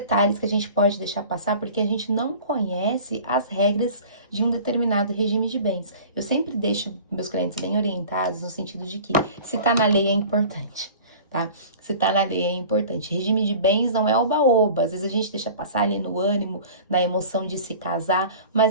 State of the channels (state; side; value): inverted; both; correlation -0.42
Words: que a gente pode deixar passar, porque a gente não conhece as regras de um determinado regime de bens. Eu sempre deixo meus clientes bem orientados no sentido de que se tá na lei é importante, tá? Se tá na lei é importante. Regime de bens não é oba-oba, às vezes a gente deixa passar ali no ânimo, na emoção de se casar,